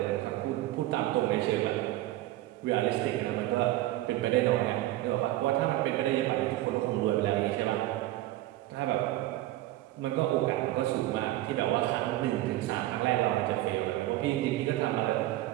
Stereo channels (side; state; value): left; quieter; 15.9 dB